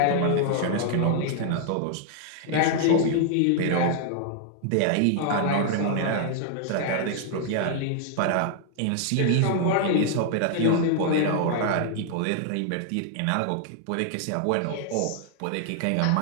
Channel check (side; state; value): both; different; correlation 0.00